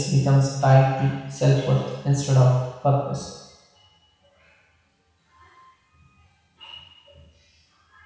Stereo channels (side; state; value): both; identical; correlation 1.00